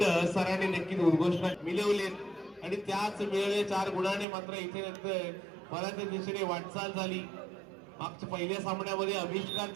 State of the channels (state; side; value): drops out; left; at 4.2 s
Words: सरांनी नक्कीच उद्घोषणा मिळवलेत आणि त्याच मिळवले 4 गुणाने मात्र इथे नंतर बऱ्याच दिशेने वाटचाल झाली. मागच्या पहिल्या सामन्यामध्ये